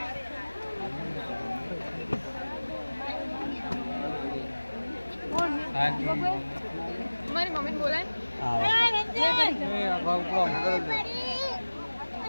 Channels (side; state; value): both; inverted; correlation -1.00